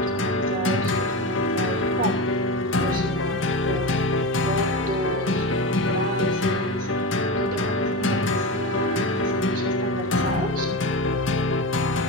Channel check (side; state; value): both; normal; correlation 0.22